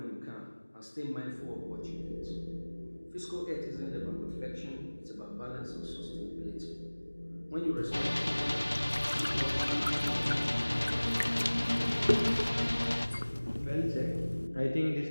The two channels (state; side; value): inverted; both; correlation -1.00